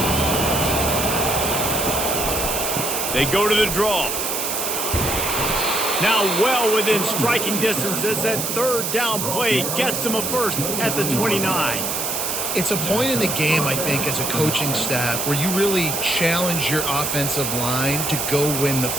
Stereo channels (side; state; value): right; noise; hiss, 2 dB below the sound